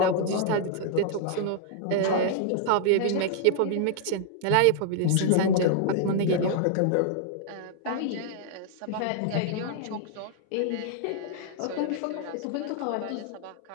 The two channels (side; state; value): both; different; correlation -0.01